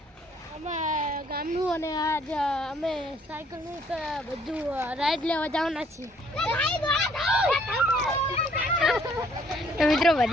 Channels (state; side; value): normal; both; correlation 0.63